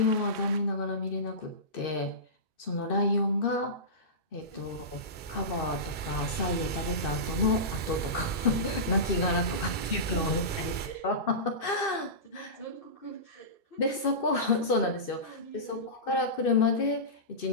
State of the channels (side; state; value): right; late; 2.6 ms